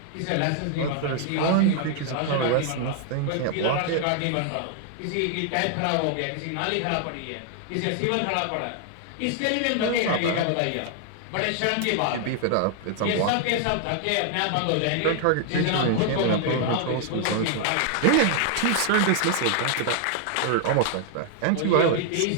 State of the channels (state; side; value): different; both; correlation 0.00